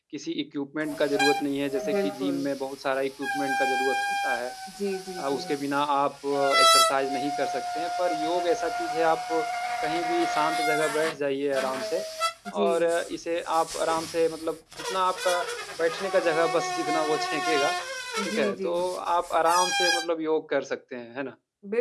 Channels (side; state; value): both; identical; correlation 1.00